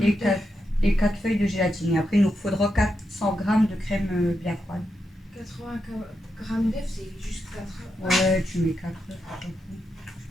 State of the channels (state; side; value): normal; both; correlation 0.85